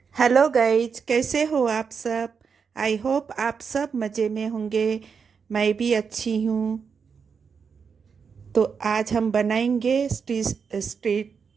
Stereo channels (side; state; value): left; quieter; 6.0 dB